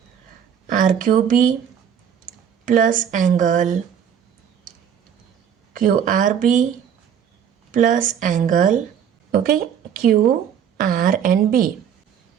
R Q B plus angle Q R B plus angle okay Q R and B.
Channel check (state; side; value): quieter; left; 8.4 dB